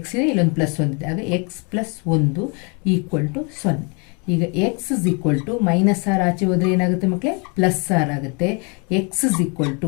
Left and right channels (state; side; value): quieter; right; 33.6 dB